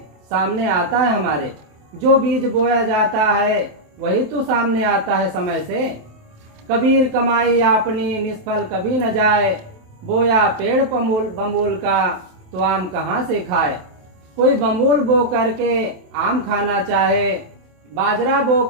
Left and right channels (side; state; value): left; late; 27 ms